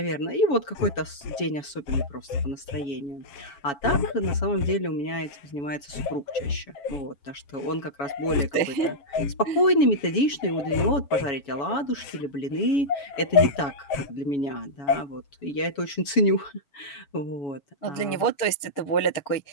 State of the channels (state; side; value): late; right; 7.1 ms